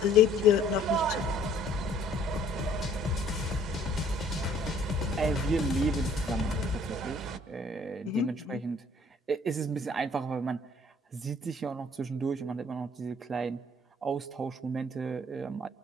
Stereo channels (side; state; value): both; normal; correlation 0.58